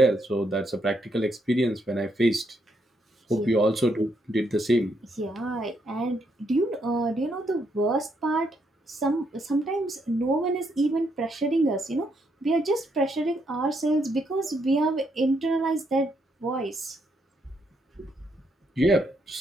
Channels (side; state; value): both; normal; correlation 0.76